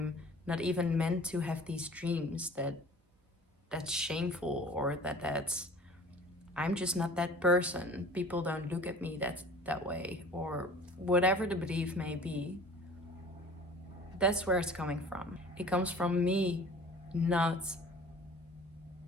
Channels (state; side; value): normal; both; correlation 0.46